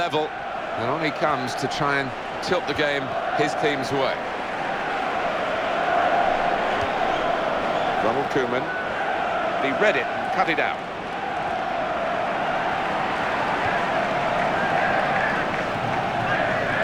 and on he comes to try and tilt the game his team's way. Ronald Koeman, he read it and cut it out.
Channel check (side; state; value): both; identical; correlation 1.00